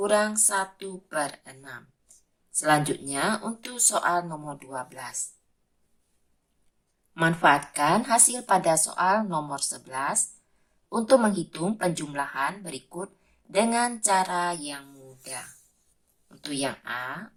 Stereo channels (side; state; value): both; identical; correlation 1.00